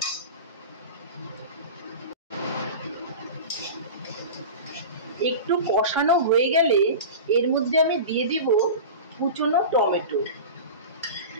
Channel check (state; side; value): inverted; both; correlation -0.30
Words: একটু কষানো হয়ে গেলে এর মধ্যে আমি দিয়ে দিব কুচনো টমেটো।